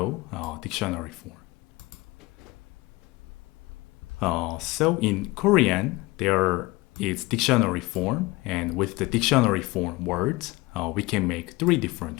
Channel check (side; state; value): right; quieter; 22.0 dB